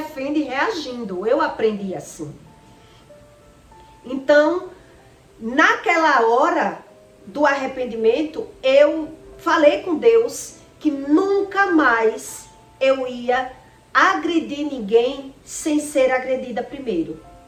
reagindo. Eu aprendi assim. Então, naquela hora do arrependimento, eu falei com Deus que nunca mais eu ia agredir ninguém sem ser agredida primeiro.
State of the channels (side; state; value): both; identical; correlation 1.00